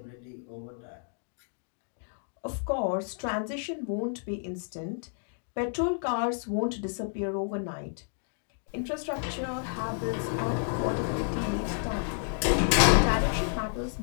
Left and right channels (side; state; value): right; silent; digital silence